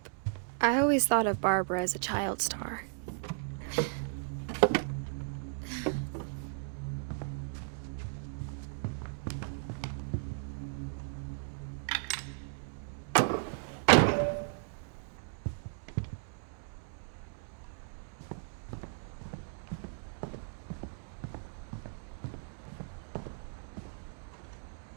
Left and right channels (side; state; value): left; silent; digital silence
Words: I always thought of Barbara as a child star.